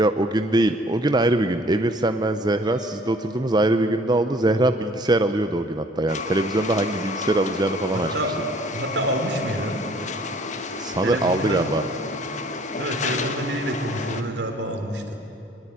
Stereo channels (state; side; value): normal; both; correlation 0.56